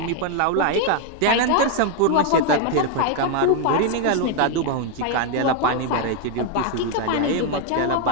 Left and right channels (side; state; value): both; different; correlation 0.01